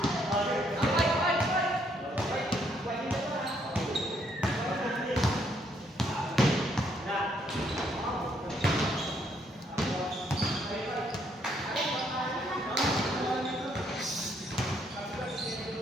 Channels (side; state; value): both; normal; correlation 0.71